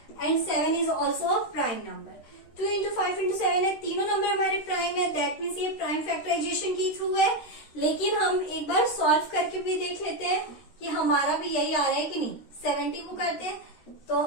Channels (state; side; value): late; right; 13 ms